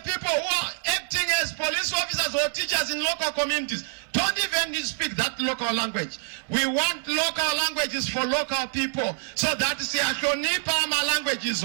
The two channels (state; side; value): silent; left; 61 dB below the other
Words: people who are acting as police officers or teachers in local communities don't even speak that local language. We want local languages for local people so that our language is